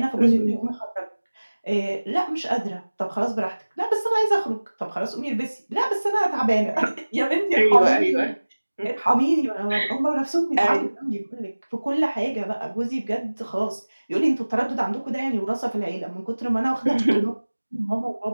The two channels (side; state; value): both; inverted; correlation -1.00